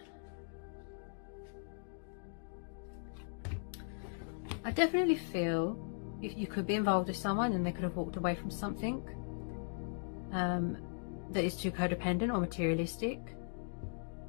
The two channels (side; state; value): right; silent; digital silence